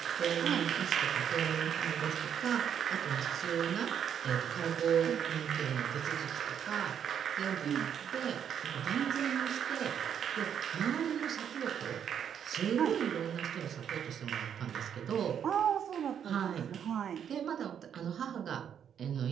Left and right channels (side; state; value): left; quieter; 8.6 dB